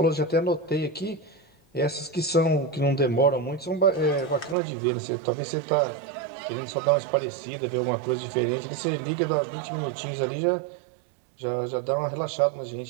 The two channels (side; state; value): left; drops out; at 4.5 s